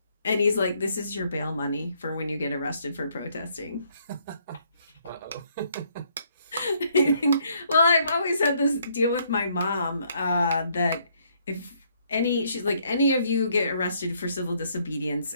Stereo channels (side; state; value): both; inverted; correlation -0.69